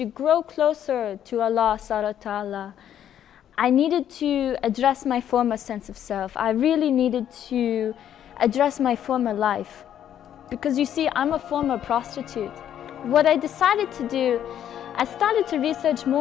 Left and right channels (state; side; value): quieter; right; 10.2 dB